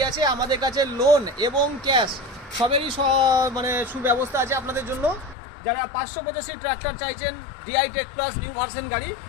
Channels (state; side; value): drops out; right; at 5.4 s